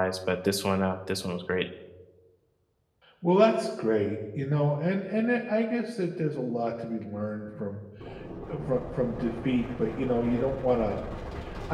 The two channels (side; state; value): both; identical; correlation 1.00